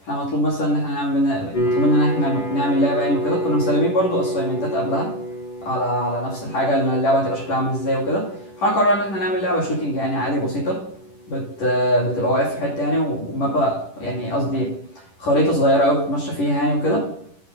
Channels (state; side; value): late; right; 10 ms